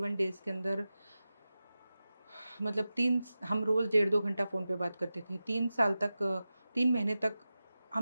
डेज के अंदर, मतलब हम रोज 1.5-2 घंटा फोन पे बात करते थे 3 साल तक, 3 महीने तक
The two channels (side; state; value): both; inverted; correlation -0.94